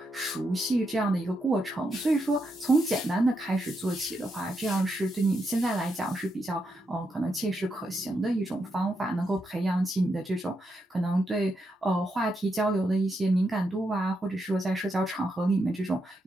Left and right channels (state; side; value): normal; both; correlation 0.82